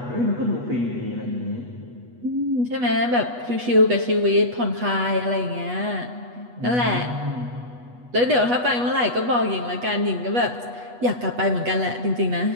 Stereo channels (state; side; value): late; left; 8.2 ms